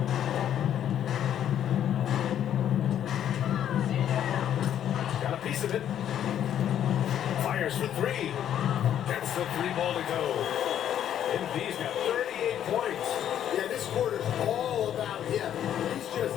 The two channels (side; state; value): right; quieter; 10.3 dB